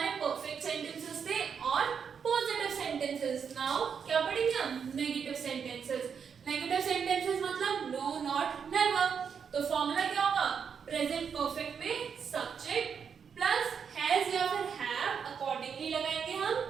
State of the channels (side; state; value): left; quieter; 6.8 dB